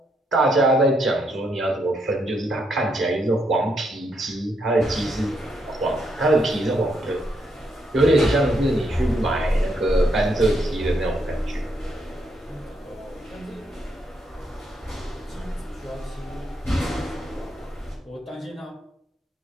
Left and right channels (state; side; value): normal; both; correlation 0.77